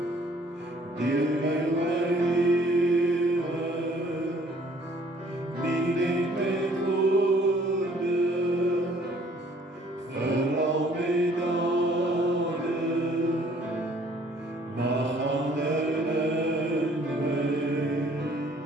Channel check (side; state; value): both; normal; correlation 0.59